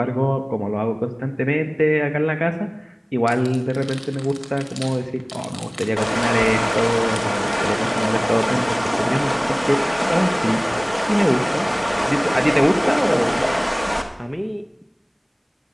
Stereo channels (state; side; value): identical; both; correlation 1.00